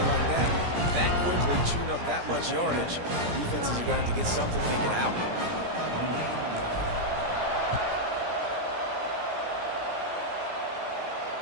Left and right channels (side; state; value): left; late; 17 ms